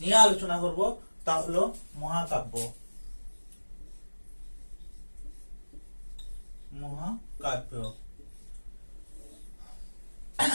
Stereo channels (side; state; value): both; inverted; correlation -1.00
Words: নিয়ে আলোচনা করব তা হলো মহাকাব্য। মহাকাব্য